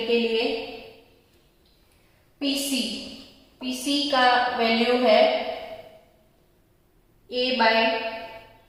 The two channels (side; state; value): both; identical; correlation 1.00